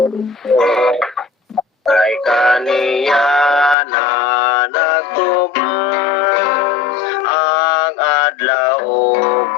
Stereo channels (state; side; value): drops out; right; at 3.8 s